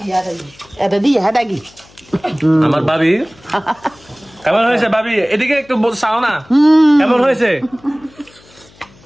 আমার ভাবি কেমন হয়েছে? ভাবি এদিকে একটু চাও না, কেমন হয়েছে?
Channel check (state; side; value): noise; left; hum, 27 dB below the sound